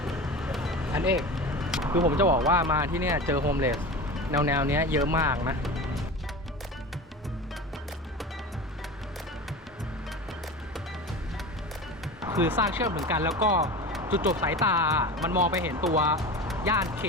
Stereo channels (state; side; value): normal; both; correlation 0.31